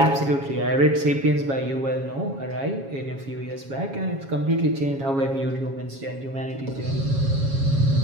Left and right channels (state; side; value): late; left; 7.3 ms